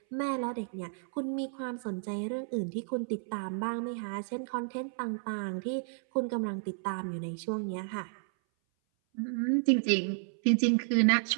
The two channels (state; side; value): silent; left; 56 dB below the other